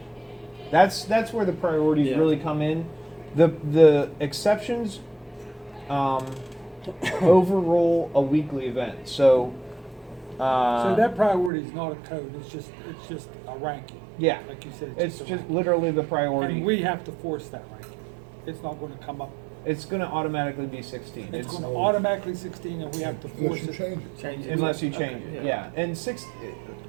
That's where the priorities Yeah. really come in. The exceptions overrule a weekly event. So So that priority is not a code, it's just a ranking. Yeah. Like you said, It's a just ranking. literally the priority. And we have to force that ranking. It's not gonna come up, It's gonna automatically be 16. it's It's, gonna automatically 16 and we have to force Unless you it. change it. Change it. unless you change Okay, it, yeah. yeah.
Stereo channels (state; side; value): drops out; left; at 11.5 s